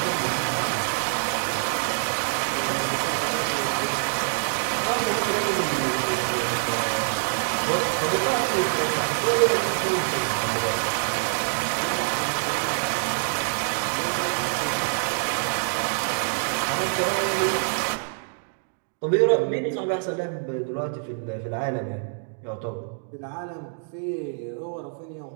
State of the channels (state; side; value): silent; left; digital silence